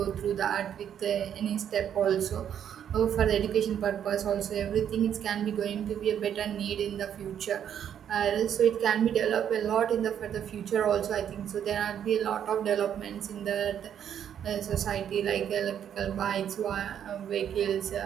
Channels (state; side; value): quieter; left; 9.3 dB